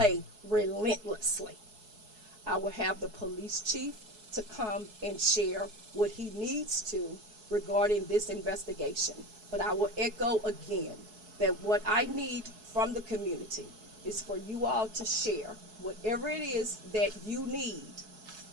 relentlessly. I will have the police chief to come and share what he needs to regarding this investigation. But I will echo again that what I need from the community is for you all to share whatever it is that you need,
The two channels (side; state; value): left; late; 4.7 ms